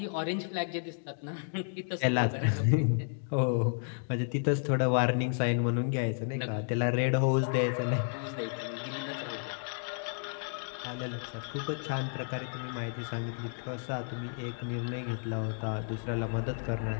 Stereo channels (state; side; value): silent; right; digital silence